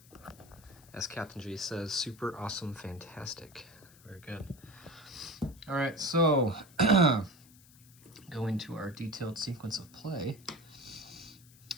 As Captain G says, super awesome, fantastic. Very good. All right, so going to our detailed sequence of play.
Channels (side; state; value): left; noise; hiss, 24 dB below the sound